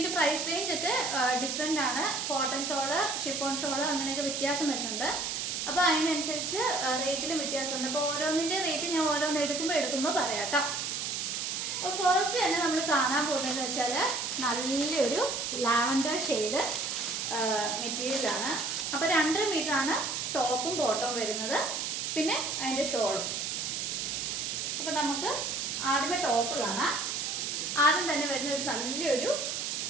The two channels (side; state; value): right; noise; hiss, 2 dB below the sound